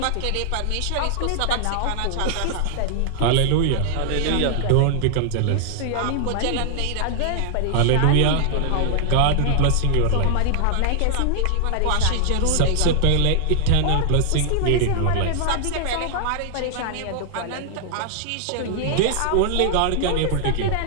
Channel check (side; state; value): both; different; correlation -0.01